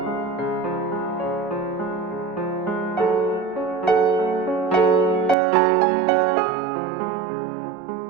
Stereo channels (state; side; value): drops out; left; at 5.4 s